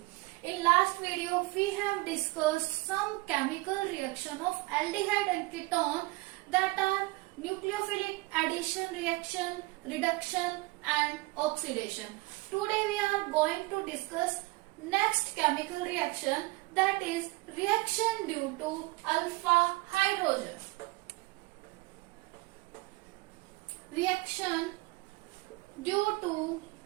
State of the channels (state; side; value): quieter; left; 22.7 dB